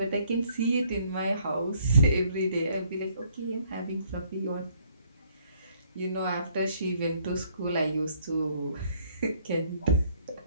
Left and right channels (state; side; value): inverted; both; correlation -0.65